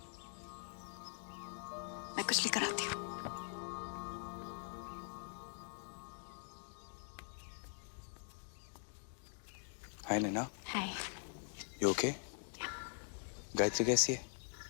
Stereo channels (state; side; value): silent; right; digital silence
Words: मैं कुछ लेकर आती हूँ। Hi Naina, hi. You okay? Gayatri कैसी है?